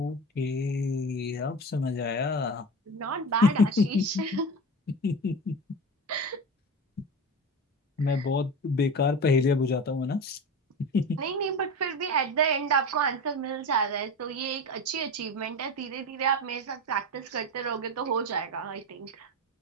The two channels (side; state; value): both; normal; correlation 0.27